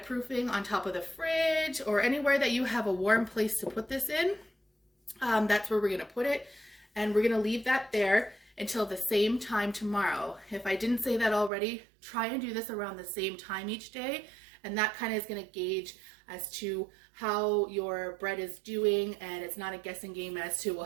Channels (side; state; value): left; drops out; at 11.5 s